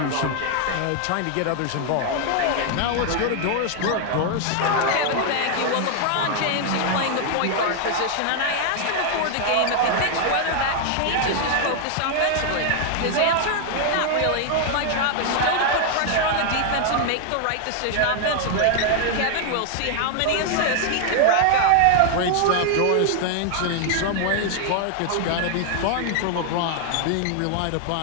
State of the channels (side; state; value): both; different; correlation 0.00